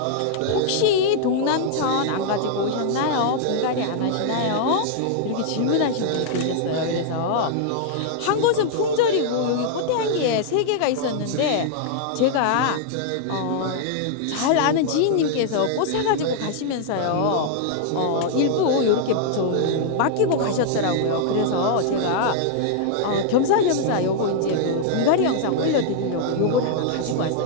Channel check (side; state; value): both; different; correlation -0.01